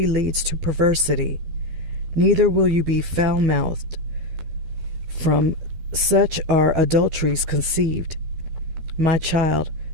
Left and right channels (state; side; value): late; left; 12 ms